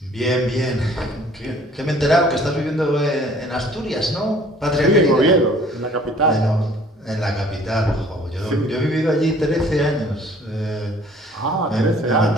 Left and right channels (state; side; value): normal; both; correlation 0.55